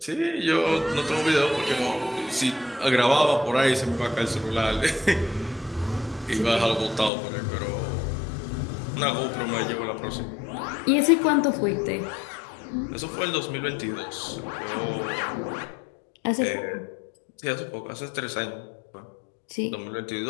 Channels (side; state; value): right; drops out; at 7.1 s